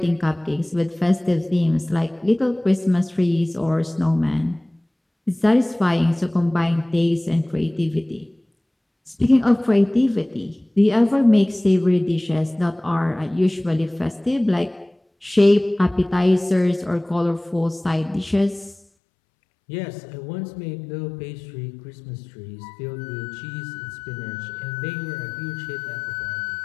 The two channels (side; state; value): right; drops out; at 18.8 s